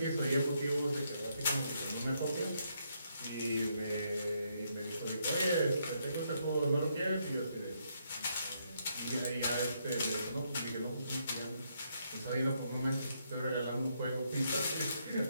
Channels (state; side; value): inverted; both; correlation -0.75